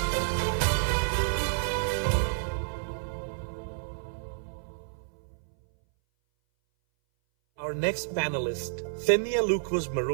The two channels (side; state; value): left; silent; 58 dB below the other